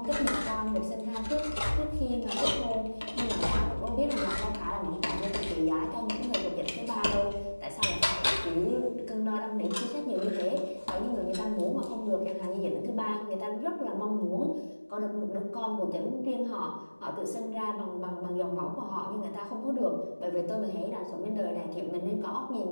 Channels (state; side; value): inverted; both; correlation -1.00